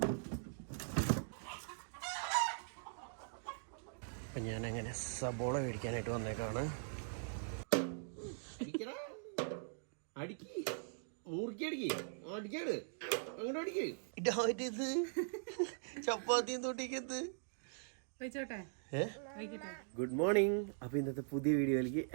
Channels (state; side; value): silent; left; digital silence